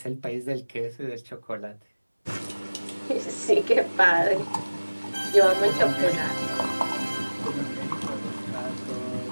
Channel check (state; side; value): inverted; both; correlation -1.00